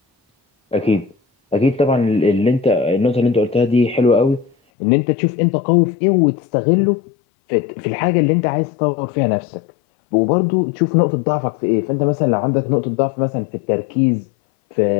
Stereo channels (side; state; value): right; drops out; at 4.5 s